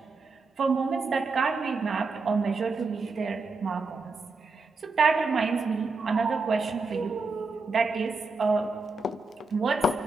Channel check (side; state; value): left; quieter; 3.8 dB